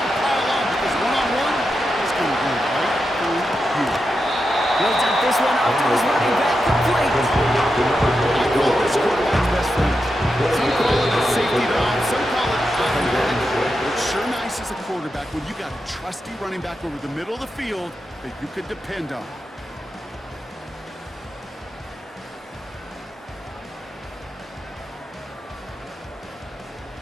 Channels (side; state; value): both; normal; correlation 0.88